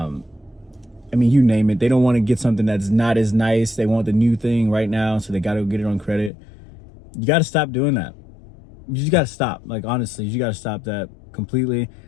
you name it. They don't want to get something that's not as nice. They want the new thing right now, so they got to get it on credit. You got to stop doing that. You just got to stop. Like, honestly, you got to stop that completely.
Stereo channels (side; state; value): right; drops out; at 6.3 s